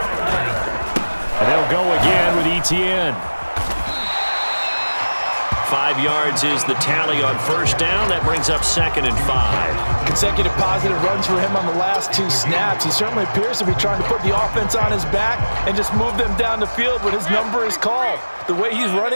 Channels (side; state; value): both; inverted; correlation -1.00